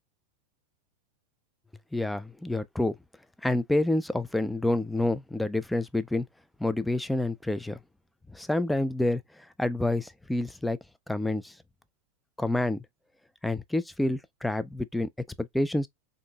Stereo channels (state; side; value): normal; both; correlation 0.93